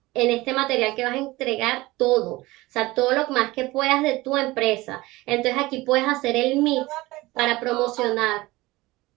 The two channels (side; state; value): left; quieter; 20.0 dB